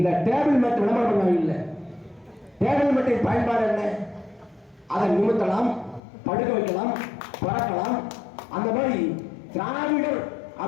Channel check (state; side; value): drops out; right; at 6.0 s